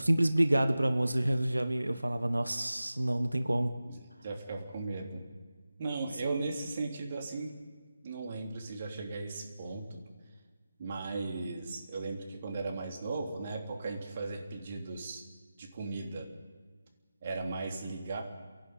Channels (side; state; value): both; inverted; correlation -0.94